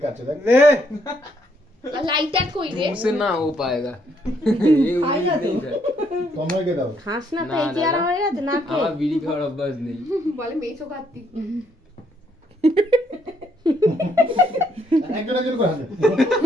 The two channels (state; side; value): normal; both; correlation 0.71